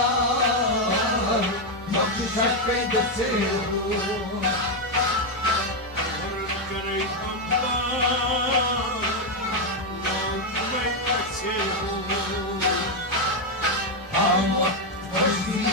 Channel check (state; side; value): normal; both; correlation 0.04